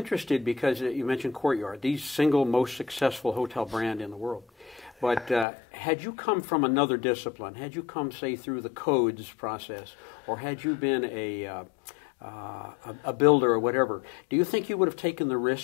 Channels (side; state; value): right; drops out; at 5.5 s